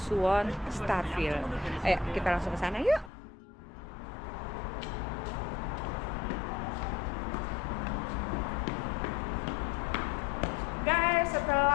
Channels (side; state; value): right; drops out; at 3.1 s